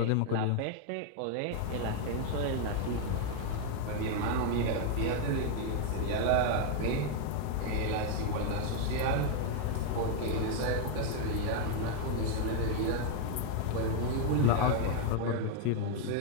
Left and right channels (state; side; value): different; both; correlation 0.00